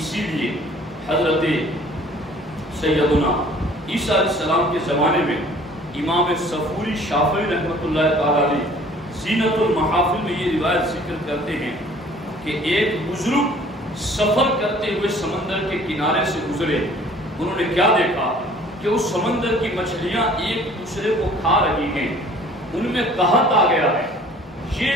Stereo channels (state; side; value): normal; both; correlation 0.52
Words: لیے حضرت سیدنا عیسیٰ علیہ السلام کے زمانے میں امام صفوری شافعی رحمۃ اللہ تعالی علیہ زینت المحافل میں یہ روایت ذکر کرتے ہیں کہ ایک بزرگ سفر کرتے ہوئے سمندر کے کنارے سے گزرے، انہوں نے کیا دیکھا کہ اس سمندر کی مچھلیاں ایک دوسرے کو کھا رہی ہیں، ان میں قحط آ گیا ہے۔